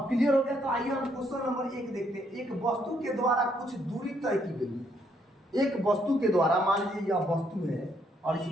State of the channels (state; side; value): normal; both; correlation 0.72